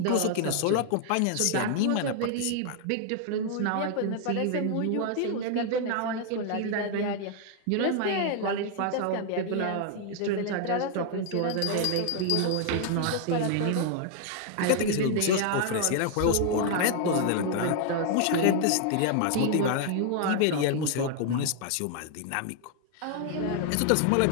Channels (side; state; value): both; different; correlation 0.00